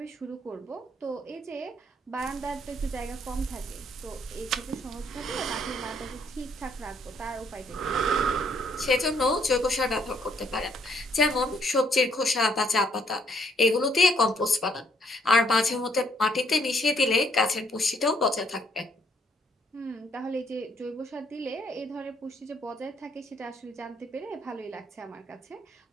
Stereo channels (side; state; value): both; normal; correlation 0.68